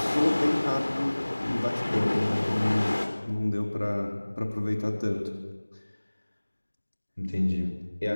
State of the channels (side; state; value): both; inverted; correlation -1.00